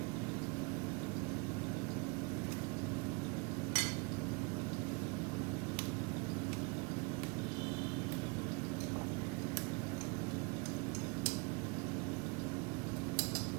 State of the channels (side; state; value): left; quieter; 30.1 dB